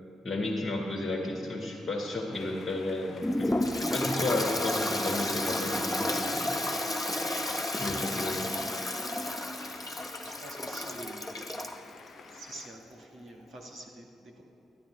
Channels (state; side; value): normal; both; correlation 0.81